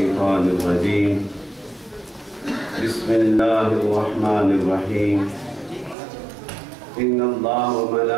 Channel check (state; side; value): drops out; left; at 6.0 s